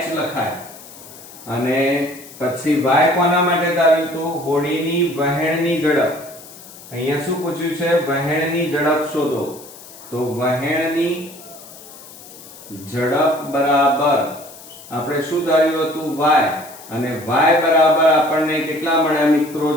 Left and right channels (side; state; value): left; noise; hiss, 18 dB below the sound